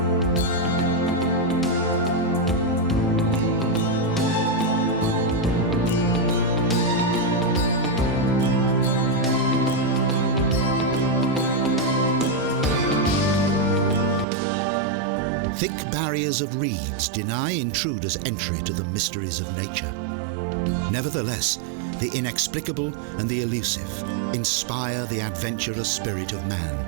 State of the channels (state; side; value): drops out; left; at 14.2 s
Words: Thick barriers of reeds deny intruders entry to the mysteries of nature. Nevertheless, the inexplicable and the elusive inspire the adventurous spirit of